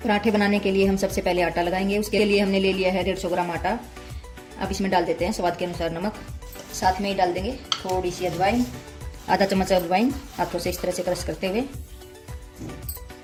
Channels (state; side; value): identical; both; correlation 1.00